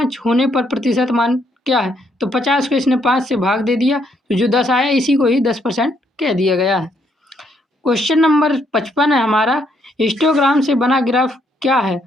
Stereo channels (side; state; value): both; normal; correlation 0.72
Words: होने पर प्रतिशत मान क्या है। तो 50 को इसने 5 से भाग दे दिया, तो जो 10 आया इसी को ही 10% कह दिया गया है। क्वेश्चन नंबर 55 है हमारा, हिस्टोग्राम से बना ग्राफ क्या है।